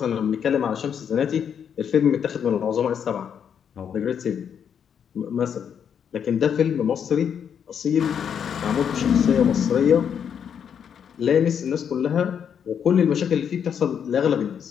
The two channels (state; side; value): quieter; right; 7.9 dB